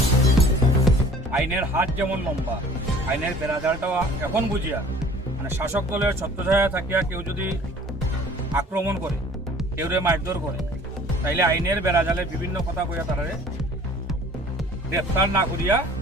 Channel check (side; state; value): both; normal; correlation 0.49